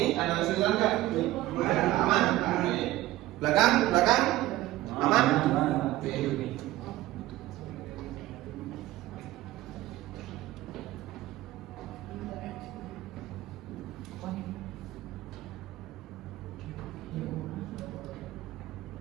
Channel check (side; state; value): left; quieter; 16.4 dB